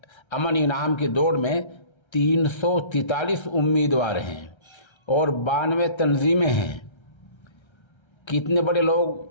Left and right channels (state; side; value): late; right; 1.3 ms